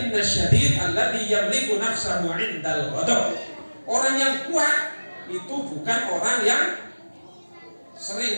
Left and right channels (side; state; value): both; inverted; correlation -1.00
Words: syadid alladhi yamliku nafsahu 'indal ghadab. Orang yang kuat itu bukan orang yang